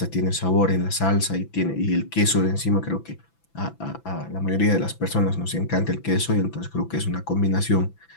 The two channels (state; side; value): late; right; 6.0 ms